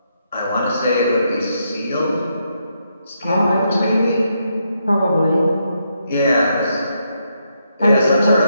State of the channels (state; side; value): inverted; both; correlation -0.79